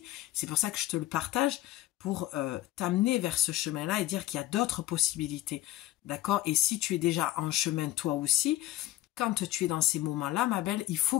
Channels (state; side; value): quieter; right; 15.3 dB